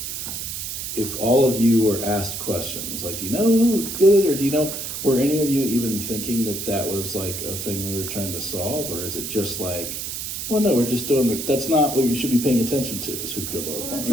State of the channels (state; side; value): noise; right; hiss, 5 dB below the sound